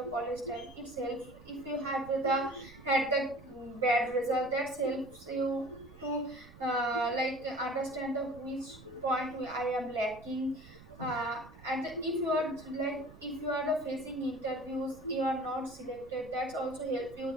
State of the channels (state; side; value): noise; right; rumble, 20 dB below the sound